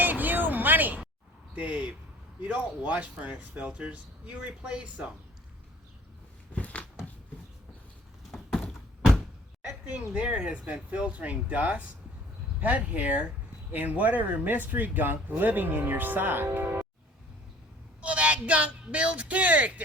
you money. Dave, you don't wash furnace filters, you replace them. That thing there has been filtering dust, pet hair, and whatever mystery gunk living in your sock. Well, that gunk builds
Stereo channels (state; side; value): normal; both; correlation 0.51